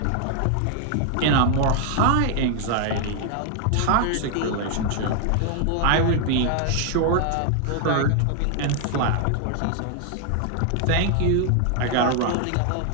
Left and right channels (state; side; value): different; both; correlation 0.00